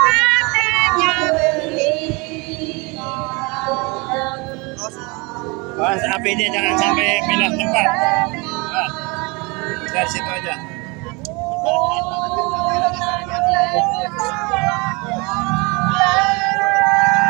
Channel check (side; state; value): left; quieter; 27.8 dB